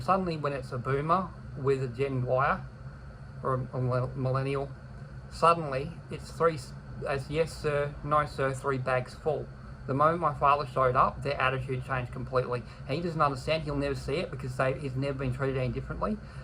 Suddenly, when it's a boomer with a Gen Y or a millennial, suddenly it's yes sir, no sir, 3 bags full. The moment my father showed up, their attitude changed completely. And he doesn't understand, he'll never see it because he's never been treated any differently.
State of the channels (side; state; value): both; identical; correlation 1.00